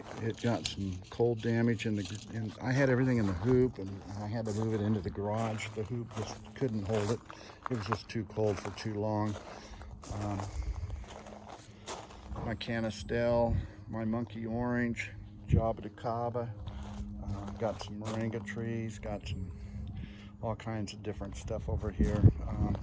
got some cold damage and I had everything in the hoop, and I had to move it into the garage. The hoop just couldn't hold it. It was just too cold for too long. My canistel, my monkey orange, Java de Cava. Got some moringa trees, got some all kinds of different stuff over here.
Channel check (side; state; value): both; identical; correlation 1.00